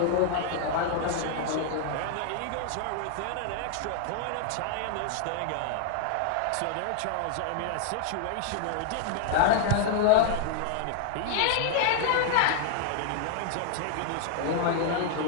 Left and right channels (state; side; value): different; both; correlation 0.00